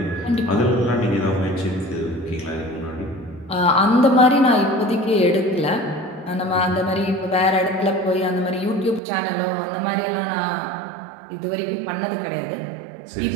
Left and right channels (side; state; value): left; drops out; at 9.0 s